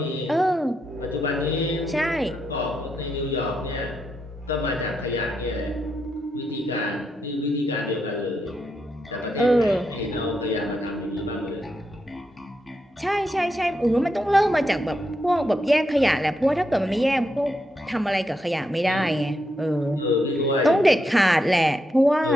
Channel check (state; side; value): normal; both; correlation 0.82